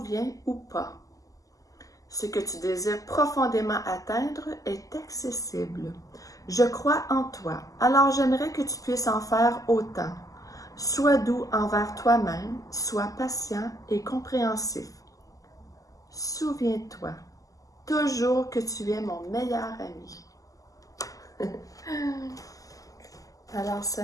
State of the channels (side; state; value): right; late; 0.17 ms